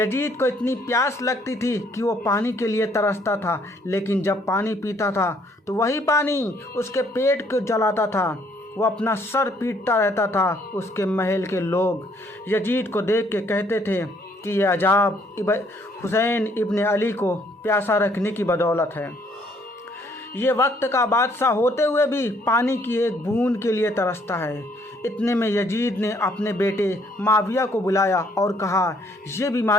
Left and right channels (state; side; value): normal; both; correlation 0.65